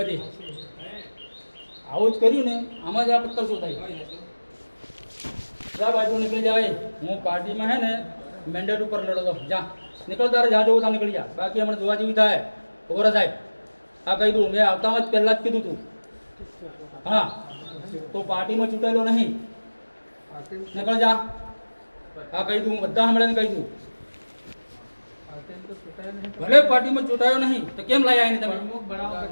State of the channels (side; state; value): both; inverted; correlation -1.00